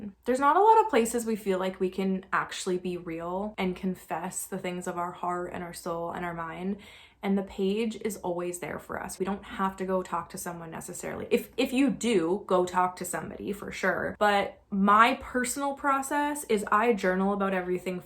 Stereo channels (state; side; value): identical; both; correlation 1.00